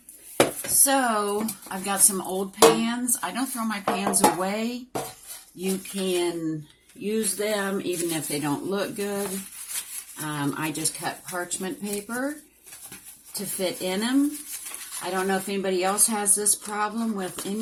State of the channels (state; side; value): identical; both; correlation 1.00